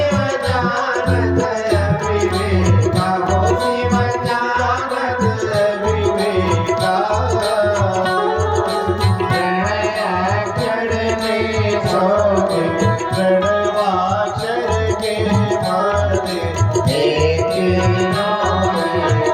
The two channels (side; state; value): both; identical; correlation 1.00